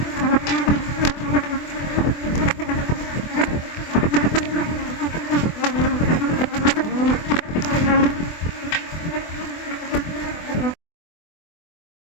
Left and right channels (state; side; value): late; right; 24 ms